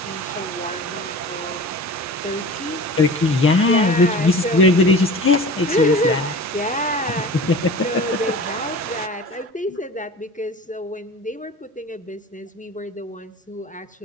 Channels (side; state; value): both; normal; correlation 0.37